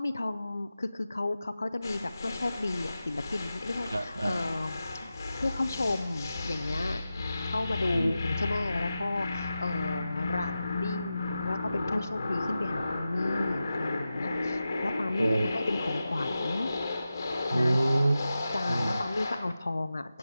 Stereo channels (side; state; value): both; inverted; correlation -0.93